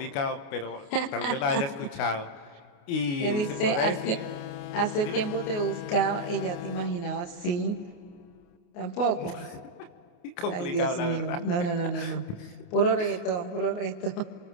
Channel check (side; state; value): right; late; 29 ms